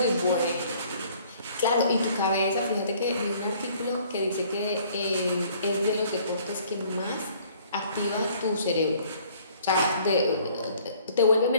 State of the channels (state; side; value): inverted; both; correlation -0.57